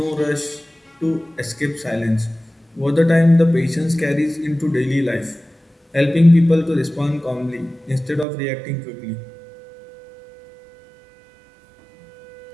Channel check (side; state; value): left; drops out; at 8.2 s